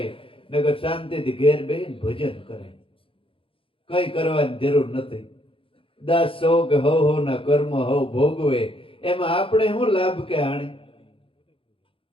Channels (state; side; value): late; right; 0.26 ms